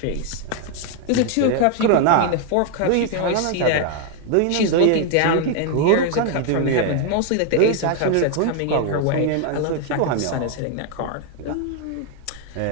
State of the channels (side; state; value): both; different; correlation 0.00